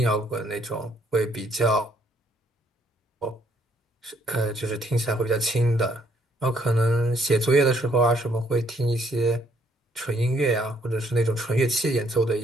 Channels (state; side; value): normal; both; correlation 0.67